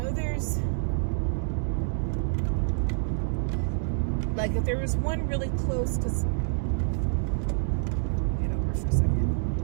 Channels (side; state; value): left; silent; digital silence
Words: there's, like, if there was one really close, because, get over for a second.